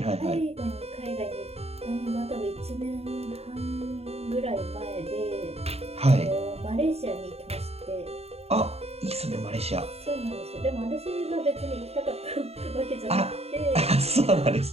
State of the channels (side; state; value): left; late; 0.30 ms